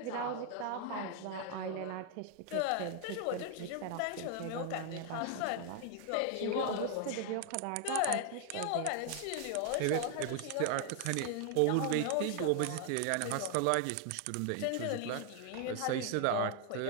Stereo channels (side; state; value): both; different; correlation 0.00